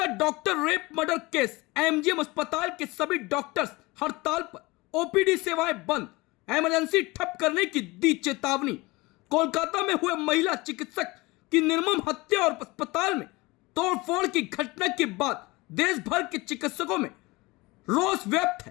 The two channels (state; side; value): quieter; right; 22.7 dB